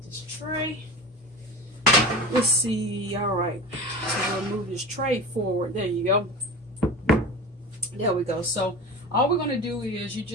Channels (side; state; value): both; normal; correlation 0.31